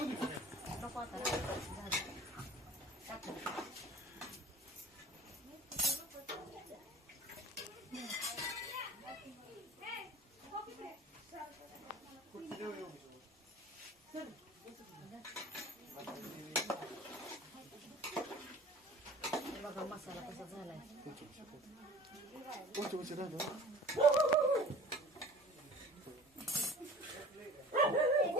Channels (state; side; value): normal; both; correlation 0.43